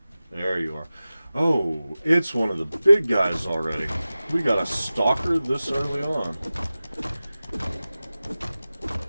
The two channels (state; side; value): inverted; both; correlation -0.96